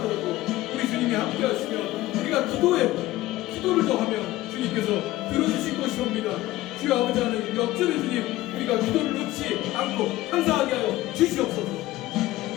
우리 주님이 함께 하시면 우리가 기도를 더하면 주님께서 들어주실 것이옵니다. 주여 아버지 하나님, 역전의 주님, 우리가 기도를 놓지 않고 항상하게 하여 주시옵소서.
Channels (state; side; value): quieter; right; 16.7 dB